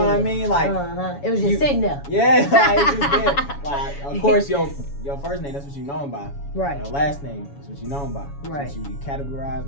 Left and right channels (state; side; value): late; right; 7.1 ms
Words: I mean? Like it was just sitting there. Yeah, like it's just there. Like of course your first name, that's what you know him by. Right. Your last name, that's what you know him by. Right. That's what you categorize